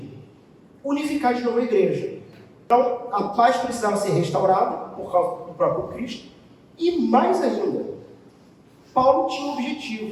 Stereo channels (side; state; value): both; identical; correlation 1.00